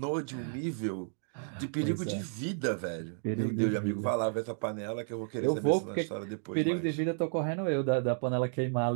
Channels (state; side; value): silent; left; 56 dB below the other